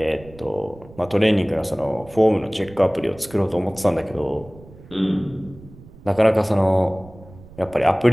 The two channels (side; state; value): right; noise; rumble, 21 dB below the sound